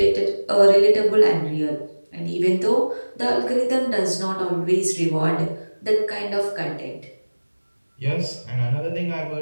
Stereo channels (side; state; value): both; inverted; correlation -1.00